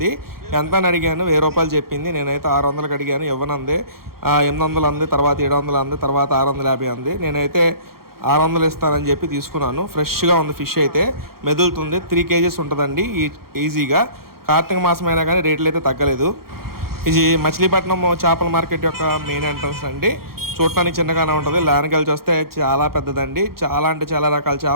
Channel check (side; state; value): left; late; 0.94 ms